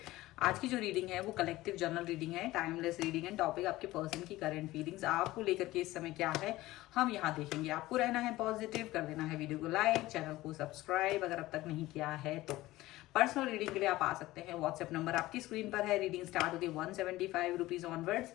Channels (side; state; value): right; quieter; 17.6 dB